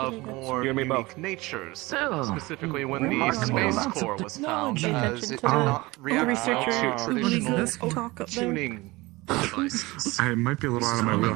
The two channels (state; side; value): quieter; left; 21.8 dB